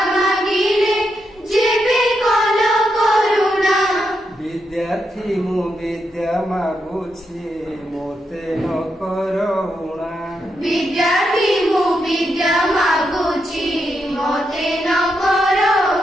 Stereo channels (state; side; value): normal; both; correlation 0.83